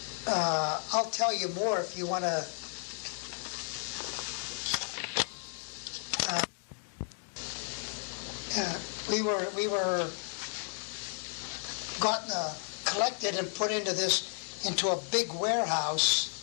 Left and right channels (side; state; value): right; silent; 56 dB below the other